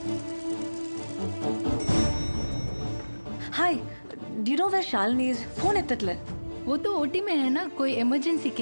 Hi, do you know where Shalini is? Phone एत्तट्ले। वो तो ओटी में है ना, कोई इमरजेंसी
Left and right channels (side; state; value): both; inverted; correlation -1.00